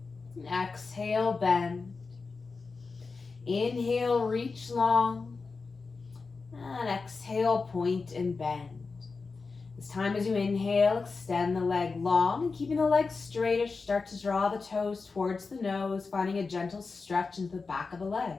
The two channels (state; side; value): quieter; right; 4.4 dB